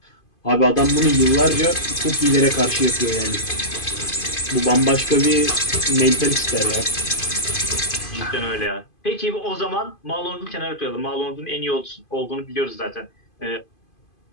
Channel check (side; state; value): right; late; 2.5 ms